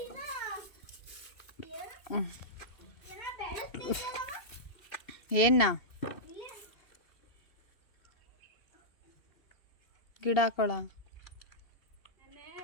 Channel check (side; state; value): right; late; 2.7 ms